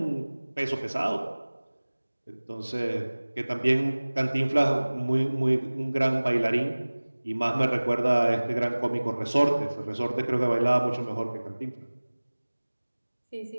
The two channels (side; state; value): both; inverted; correlation -1.00